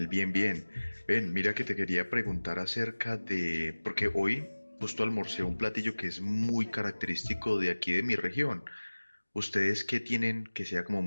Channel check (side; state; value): both; inverted; correlation -1.00